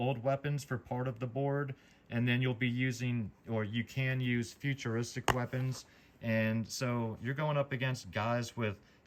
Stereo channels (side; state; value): both; identical; correlation 1.00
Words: weapons for part of the board, and then you'll be using, or you can use, futuristic weapons. And so you're going up against guys with